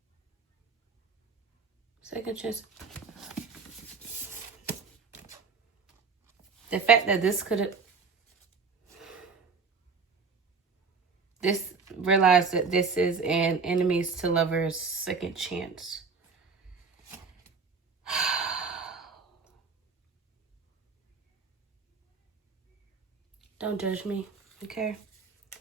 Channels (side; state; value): left; quieter; 5.0 dB